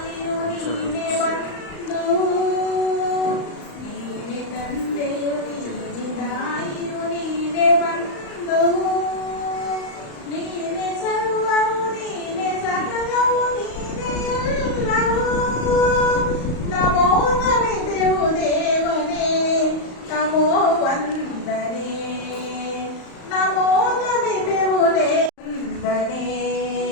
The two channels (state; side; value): late; right; 35 ms